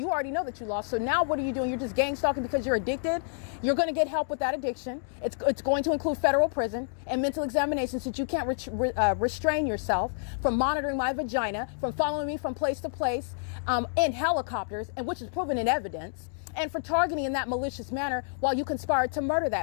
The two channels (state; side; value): silent; right; digital silence